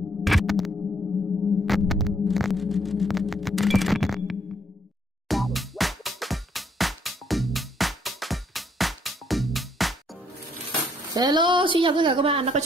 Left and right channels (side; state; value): both; normal; correlation 0.69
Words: xin chào tất cả các bạn đã quay